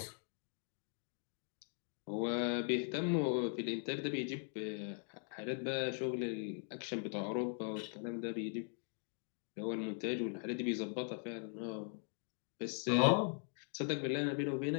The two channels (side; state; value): right; silent; 51 dB below the other